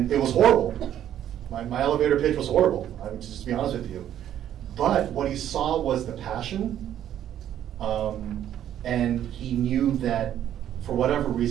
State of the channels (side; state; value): left; quieter; 10.9 dB